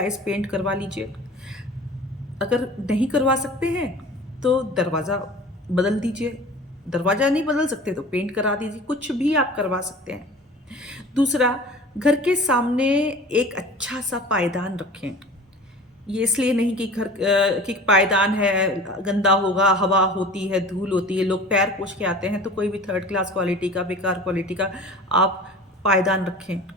पेंट करवा लीजिए। अगर नहीं करवा सकते हैं तो दरवाज़ा बदल दीजिए। दरवाज़ा नहीं बदल सकते तो पेंट करा दीजिए। कुछ भी आप करवा सकते हैं। दूसरा, घर के सामने एक अच्छा सा पायदान रखें। ये इसलिए नहीं कि कि पायदान है गंदा होगा, हवा होती है, धूल होती है, लोग पैर पोंछ के आते हैं, तो कोई भी थर्ड क्लास क्वालिटी का, बेकार क्वालिटी का आप पायदान रखें।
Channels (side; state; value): both; normal; correlation 0.41